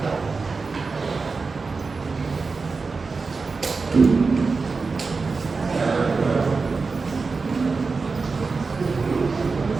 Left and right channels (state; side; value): quieter; left; 4.4 dB